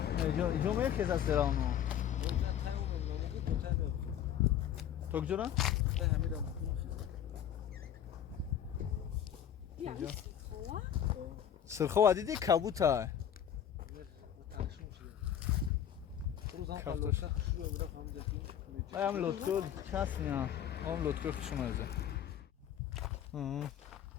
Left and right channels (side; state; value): right; quieter; 9.7 dB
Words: иҷо мехезад серавно токҷора сирхова диди кабута ам лотко часня ам лотко хушмазе